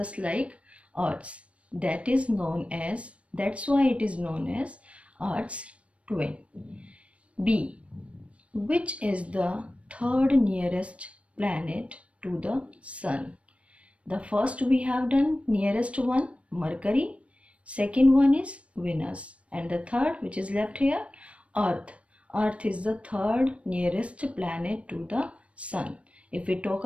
like Earth's. That's why it is known as Earth's twin. B. Which is the third nearest planet to the sun? The first we have done, nearest one, Mercury. Second one is Venus, and the third, which is left here, Earth. Earth is the third nearest planet to the sun. If we talk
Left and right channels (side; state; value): left; late; 0.062 ms